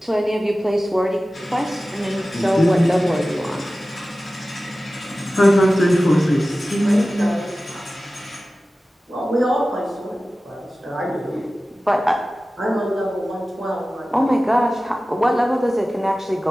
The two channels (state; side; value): normal; both; correlation 0.96